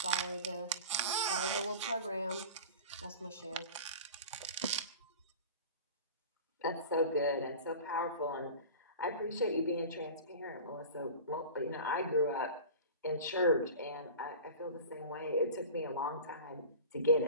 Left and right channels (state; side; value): inverted; both; correlation -0.36